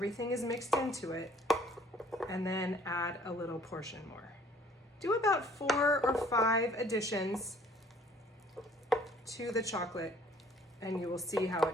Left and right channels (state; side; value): normal; both; correlation 0.57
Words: is mixed into it, and then add a little portion more. Do about 4 or 5 additions to the chocolate, and you will see how